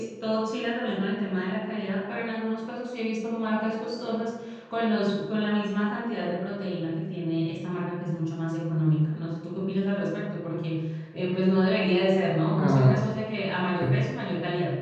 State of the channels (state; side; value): identical; both; correlation 1.00